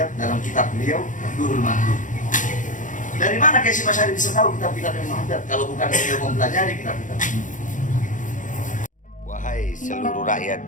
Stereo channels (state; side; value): late; right; 0.37 ms